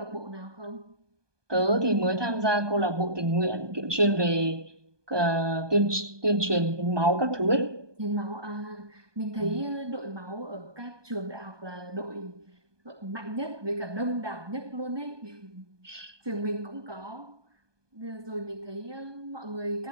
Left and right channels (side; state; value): left; late; 1.2 ms